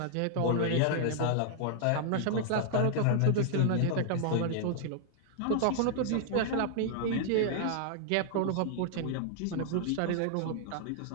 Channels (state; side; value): different; both; correlation -0.01